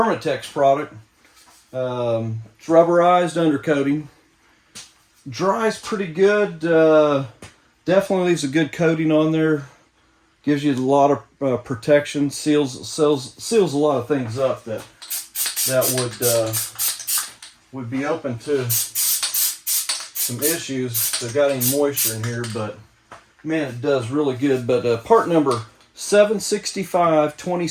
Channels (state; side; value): identical; both; correlation 1.00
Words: product. It's rubberized undercoating. Dries pretty good. Definitely leaves a good coating on there. Gives you a lot of protection, seals a lot of things up that would be open to some issues if they've got any moisture in here. But man, it does really good. But part number